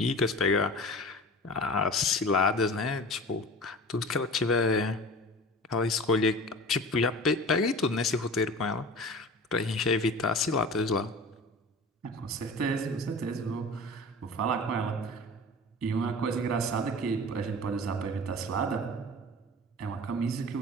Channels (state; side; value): normal; both; correlation 0.37